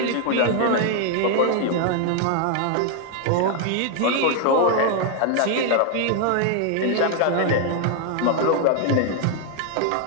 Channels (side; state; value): both; different; correlation 0.00